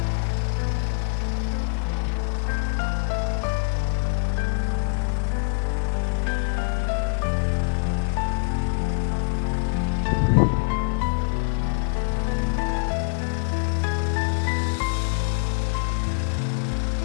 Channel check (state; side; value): silent; right; 59 dB below the other